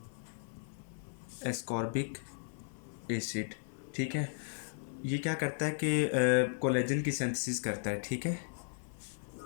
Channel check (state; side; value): silent; right; 54 dB below the other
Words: एस्कॉर्बिक एसिड। ठीक है, ये क्या करता है कि कोलेजन की सिंथेसिस करता है। ठीक है,